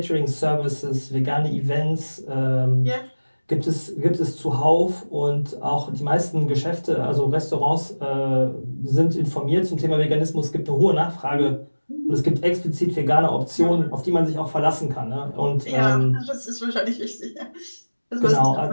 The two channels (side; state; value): both; inverted; correlation -1.00